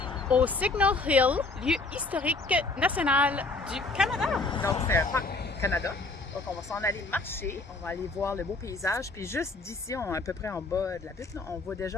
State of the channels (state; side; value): quieter; right; 3.4 dB